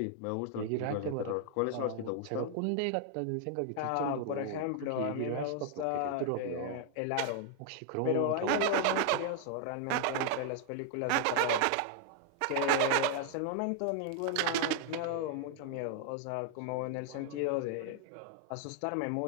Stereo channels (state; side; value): different; both; correlation -0.01